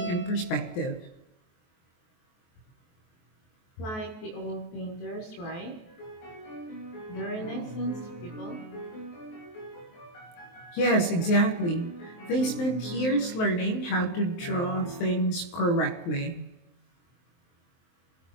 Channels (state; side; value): late; right; 23 ms